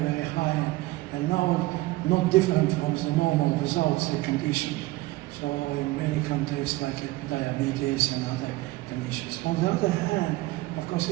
high, and now not different from the normal results the condition. So in many contexts like diabetes and other conditions. On the other hand, of course,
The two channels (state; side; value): quieter; left; 19.5 dB